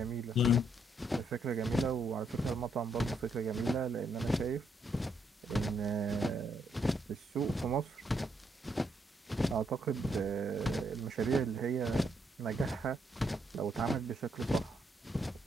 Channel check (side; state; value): both; normal; correlation 0.75